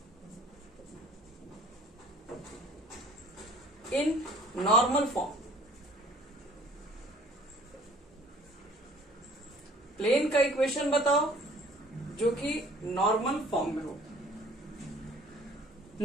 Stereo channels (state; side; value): normal; both; correlation 0.52